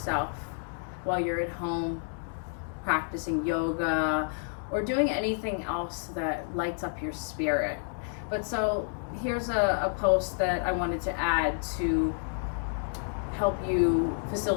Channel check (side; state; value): right; silent; digital silence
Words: while you're at home practicing yoga or doing anything else that lights up your spirit. But so here's a post that I wanted to add to help you